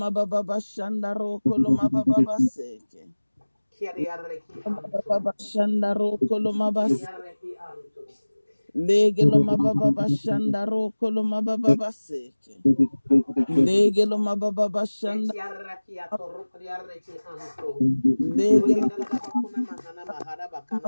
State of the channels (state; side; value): inverted; both; correlation -1.00